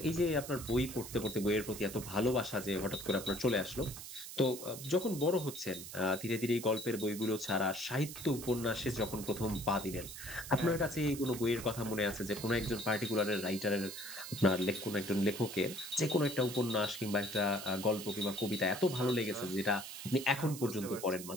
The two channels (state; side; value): noise; right; hiss, 11 dB below the sound